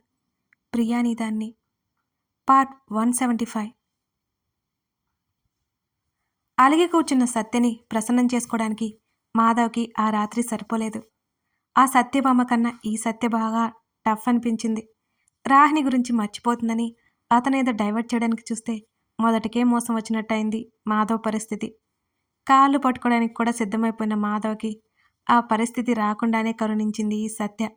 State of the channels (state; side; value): identical; both; correlation 1.00